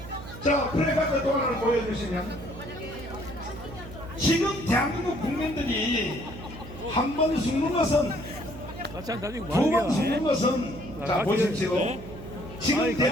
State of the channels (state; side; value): noise; right; hum, 13 dB below the sound